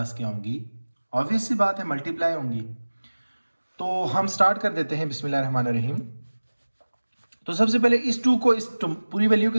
क्या होंगी, ऑब्वियस सी बात है मल्टीप्लाई होंगी। तो हम स्टार्ट कर देते हैं बिस्मिल्लाहिर्रहमानिर्रहीम। तो सबसे पहले इस 2 को इस पूरी वैल्यू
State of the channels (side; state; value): both; inverted; correlation -1.00